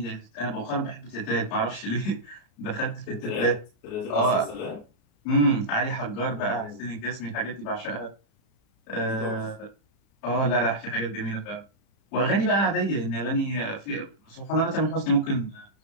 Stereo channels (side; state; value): right; late; 34 ms